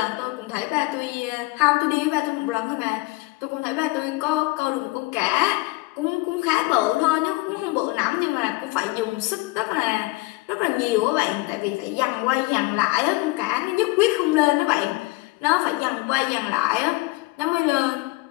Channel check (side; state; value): right; quieter; 22.0 dB